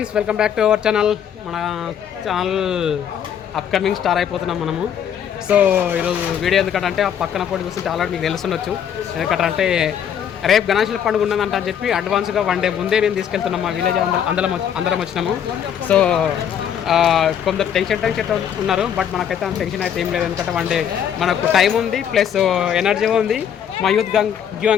welcome back to our channel. మన channel upcoming star అయిపోతున్నాం మనము. So ఈరోజు వీడియో ఎందుకంటే ఆ పక్కన పోటీ చూస్తుంటే ఆల్రెడీ మీకు తెలుసుండొచ్చు. ఎందుకంటే రేపు గణేశుల పండుగ ఉన్నదంట అని చెప్పి అడ్వాన్స్గా 1 డే ముందే మేము తీసుకెళ్తున్నాం. మా విలేజ్ అందరం వచ్చినాము. సో కొందరు టెన్షన్ ఉన్నారు, బట్ మనకైతే అంత టెన్షన్ అయితే ఏం లేదు. ఎందుకంటే 1 డే మనకు టైం ఉంది, ప్లస్ ఎనర్జీ ఉంది. మా యూత్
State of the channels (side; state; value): right; quieter; 8.8 dB